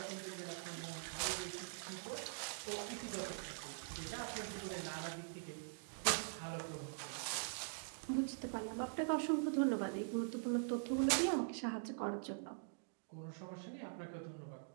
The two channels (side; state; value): left; silent; digital silence